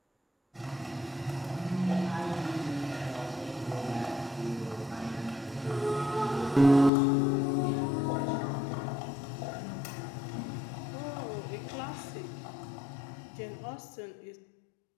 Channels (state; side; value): drops out; right; at 6.9 s